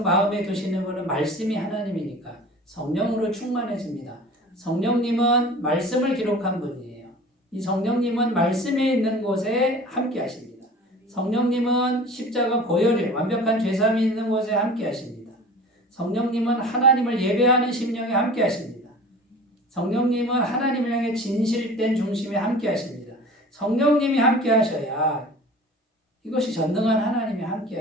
마음에 두시는 분은 말씀이 하나님이니까 성령으로 충만해집니다. 성령님은 말씀을 기록한 분이에요. 이 성령님은 말씀에 있는 곳에 함께 하십니다. 성령님은 십자가 보혈이 완벽한 죄사함이 있는 곳에 함께 하십니다. 성령님은 하나님을 예배하는 심령에 함께 하십니다. 성령님은 하나님을 향해 진실된 중심에 함께 하십니다. 성령님이 함께 하셔야 이것이 전능한 하나님이 함께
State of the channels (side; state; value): both; normal; correlation 0.41